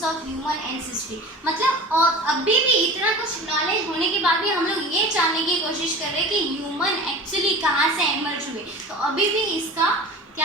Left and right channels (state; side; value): normal; both; correlation 0.37